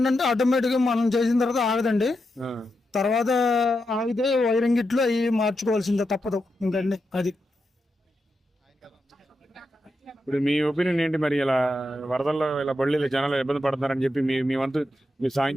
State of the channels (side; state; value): both; normal; correlation 0.86